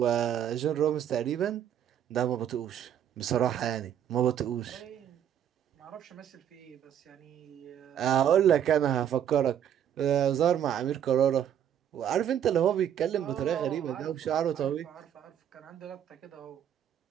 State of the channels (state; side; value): quieter; left; 9.7 dB